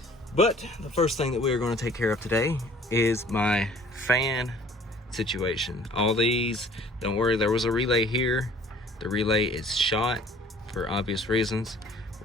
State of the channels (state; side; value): normal; both; correlation 0.52